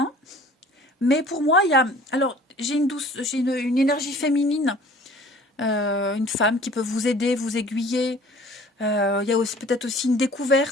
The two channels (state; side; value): normal; both; correlation 0.49